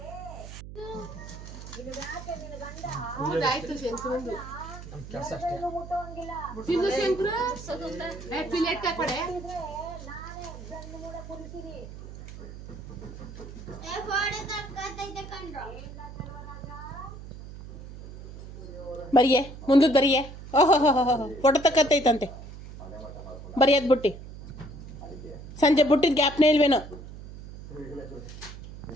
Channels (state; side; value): noise; right; hum, 13 dB below the sound